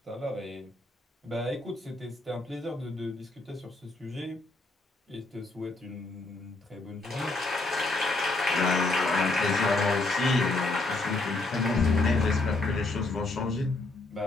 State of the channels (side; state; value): right; quieter; 3.1 dB